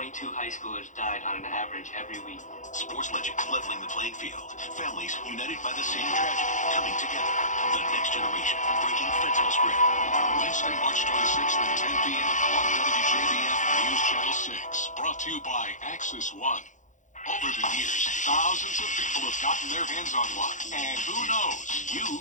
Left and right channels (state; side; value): late; right; 0.36 ms